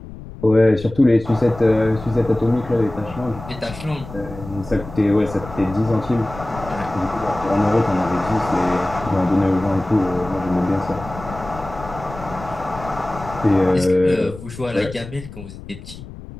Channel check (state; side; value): noise; left; rumble, 14 dB below the sound